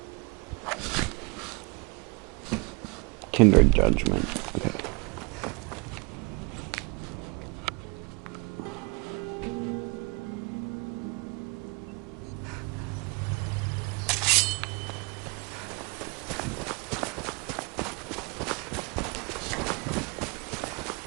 Kindred judgment. Okay.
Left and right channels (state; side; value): quieter; left; 30.2 dB